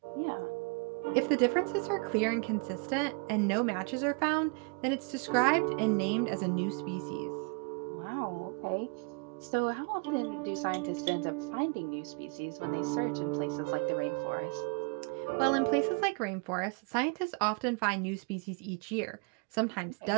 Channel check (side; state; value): left; quieter; 33.8 dB